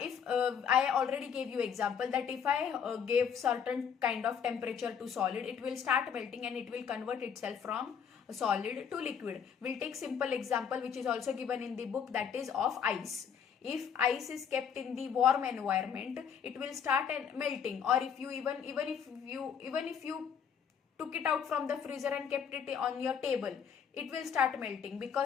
I already gave you example that if I gave certain kind of temperature to solid, it will start melting and it will convert itself from solid to liquid. We'll take simple example which is also given in the book, that is of ice. If ice is kept in the warm environment, it will start melting. Or if you even if you took it out from the freezer and kept it on your table, it will start melting,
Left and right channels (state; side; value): quieter; right; 7.4 dB